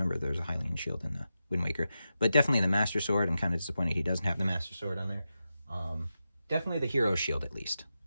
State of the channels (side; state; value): both; inverted; correlation -0.90